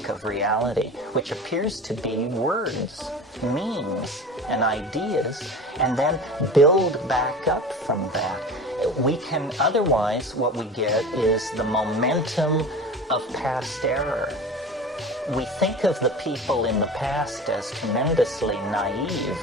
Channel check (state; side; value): normal; both; correlation 0.34